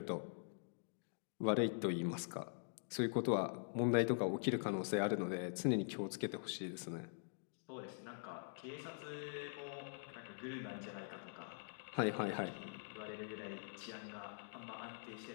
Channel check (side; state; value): right; silent; digital silence